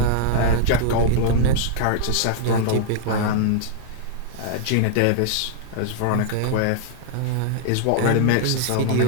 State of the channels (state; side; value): different; both; correlation -0.01